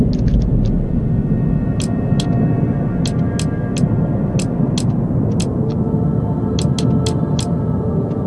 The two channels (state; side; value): identical; both; correlation 1.00